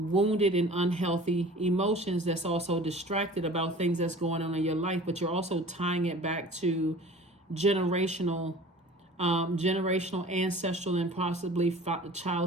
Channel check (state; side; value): normal; both; correlation 0.43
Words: and unhealthy emotions that's also distracted about things that's going on in your life, but you're also tying it back to generational, ancestral, and possibly